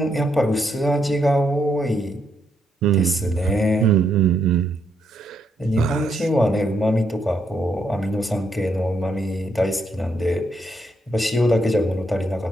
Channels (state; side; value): normal; both; correlation 0.77